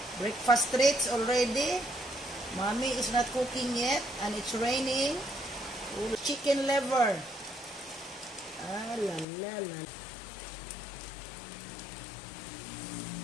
Breakfast treats already. Mommy is not cooking yet and it's raining. Chicken liver. Ah, la la la.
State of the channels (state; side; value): drops out; right; at 9.2 s